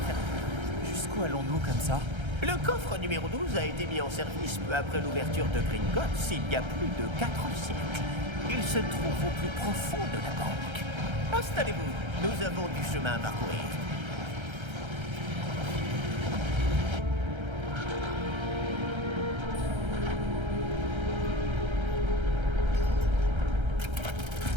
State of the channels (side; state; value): left; late; 1.3 ms